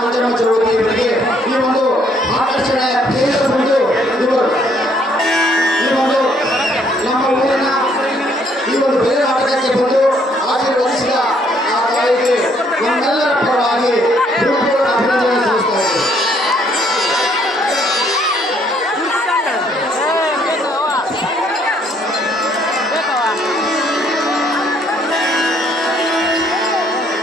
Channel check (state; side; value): normal; both; correlation 0.66